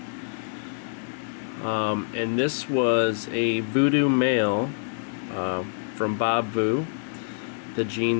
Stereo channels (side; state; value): right; silent; digital silence